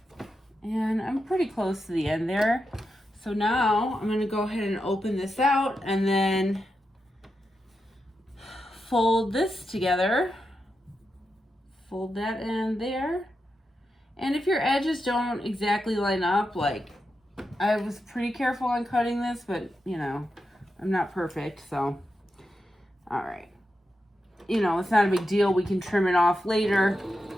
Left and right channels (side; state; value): both; normal; correlation 0.87